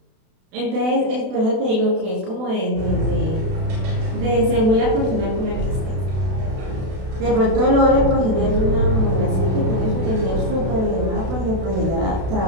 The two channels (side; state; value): left; late; 32 ms